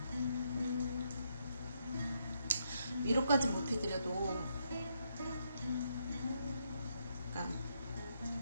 위로까지 못 해드려도 그러니까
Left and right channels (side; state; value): both; inverted; correlation -0.77